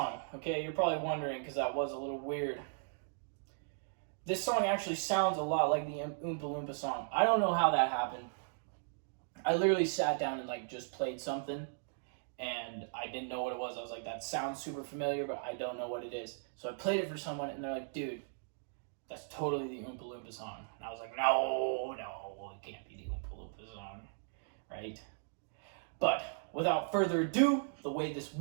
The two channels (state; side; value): silent; left; digital silence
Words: Okay, you're probably wondering because that was a little weird. This song actually sounds a lot like the Oompa Loompa song. I don't know how that happened. I literally sat down and like just played something and I didn't know what it was. I was like, that sounds super familiar, but I don't know what it is. So I played it for someone and they're like, dude, that's totally the Oompa Loompa song. And I was like, no, it can't be the Oompa Loompa song, right? But without further ado, the way this